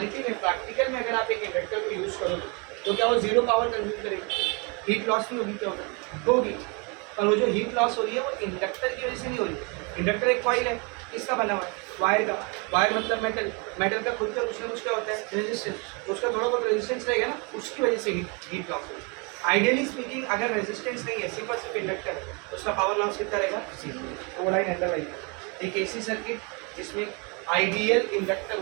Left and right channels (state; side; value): quieter; left; 32.2 dB